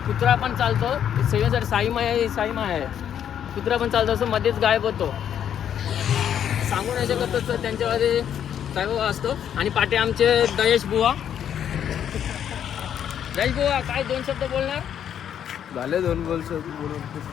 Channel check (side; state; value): right; quieter; 9.4 dB